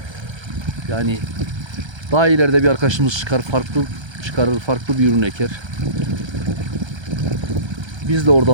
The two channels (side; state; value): left; late; 1.3 ms